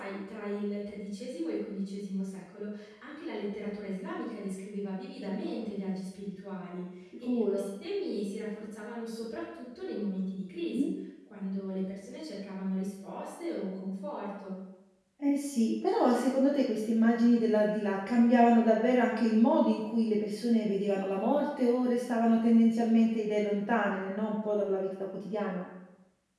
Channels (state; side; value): identical; both; correlation 1.00